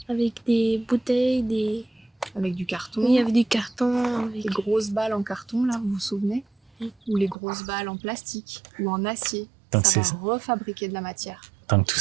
Avec des bouteilles, avec du carton. Oui, avec du carton. Avec... Les grosses balles en carton, là, vous vous souvenez? Ou les grosses balles en plastique ou en acier. Donc ça va c'est- refabriquer de la matière. Donc tout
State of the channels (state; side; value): drops out; left; at 7.4 s